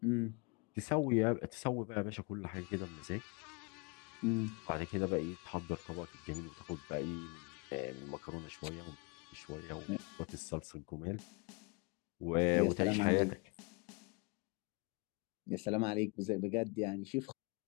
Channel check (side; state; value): right; quieter; 30.7 dB